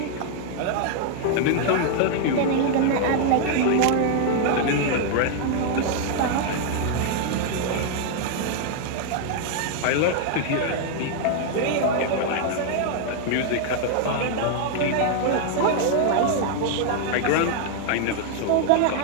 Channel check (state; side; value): different; both; correlation 0.00